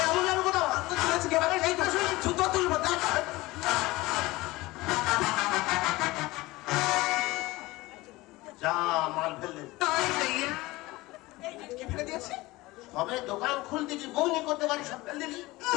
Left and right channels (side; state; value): right; quieter; 20.3 dB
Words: আমুল নামে কোথাও তো তুলেছে কে বারে এই তো জুতো তুলবো দেখ। যা মাল ফেললে এই কি ফেলে দিয়েছে? সবে দোকান খুলতেছি বউনি করতে পারি সব ফেল দিলি।